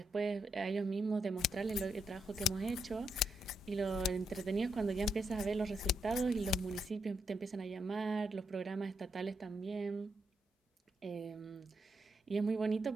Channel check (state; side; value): normal; both; correlation 0.81